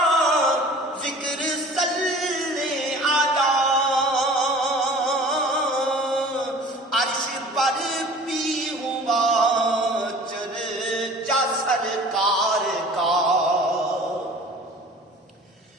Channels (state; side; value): normal; both; correlation 0.44